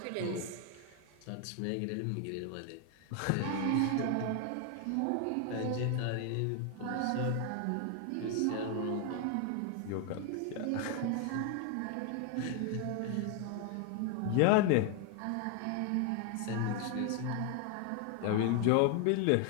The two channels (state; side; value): different; both; correlation 0.00